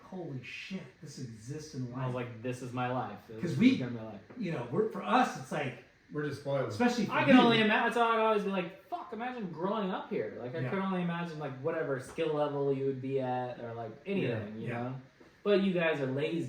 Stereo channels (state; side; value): identical; both; correlation 1.00